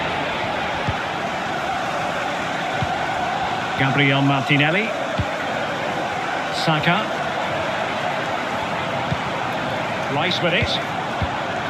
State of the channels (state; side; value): identical; both; correlation 1.00